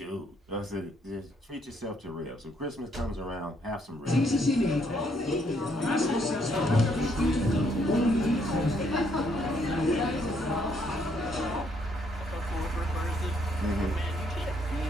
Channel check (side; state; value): both; normal; correlation 0.70